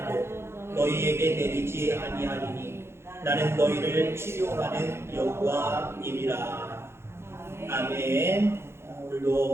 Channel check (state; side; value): late; left; 0.12 ms